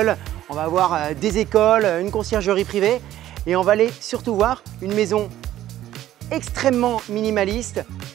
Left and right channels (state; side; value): quieter; left; 13.2 dB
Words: On va avoir des écoles, une conciergerie privée. Et on va aller surtout voir une maison extrêmement minimaliste,